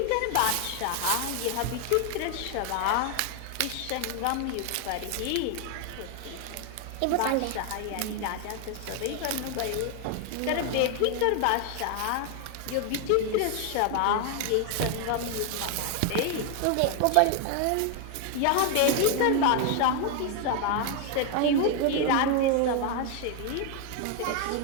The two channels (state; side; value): different; both; correlation 0.01